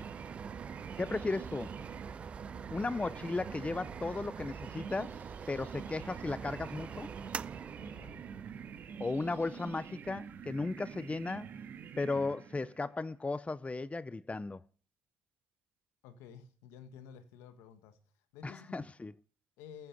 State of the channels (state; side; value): normal; both; correlation 0.88